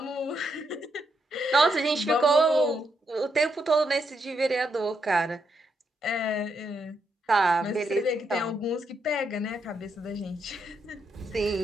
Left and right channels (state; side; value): normal; both; correlation 0.79